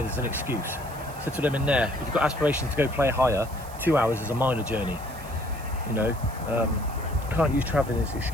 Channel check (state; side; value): noise; right; hiss, 19 dB below the sound